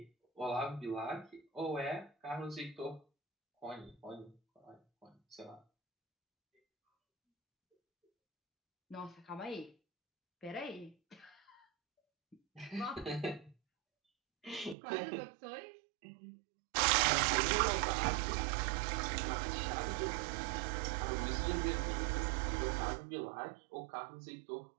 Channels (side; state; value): left; drops out; at 14.8 s